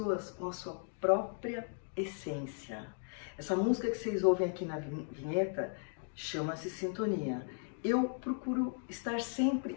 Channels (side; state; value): right; silent; 54 dB below the other